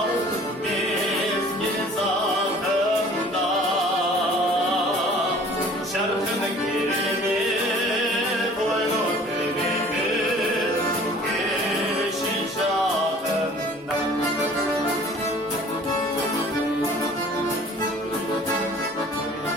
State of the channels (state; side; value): normal; both; correlation 0.50